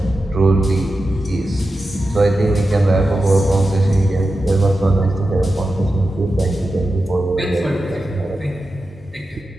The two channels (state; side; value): normal; both; correlation 0.91